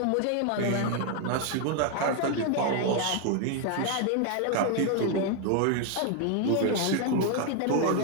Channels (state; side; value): different; both; correlation 0.01